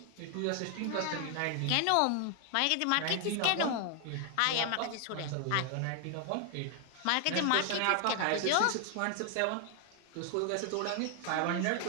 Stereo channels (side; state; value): both; different; correlation 0.00